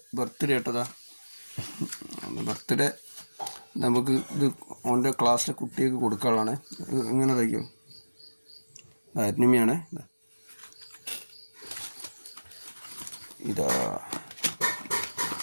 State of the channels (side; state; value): both; inverted; correlation -1.00